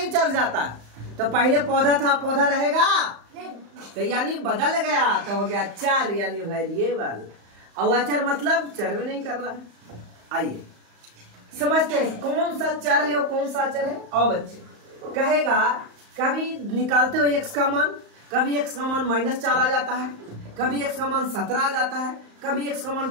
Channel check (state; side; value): late; left; 35 ms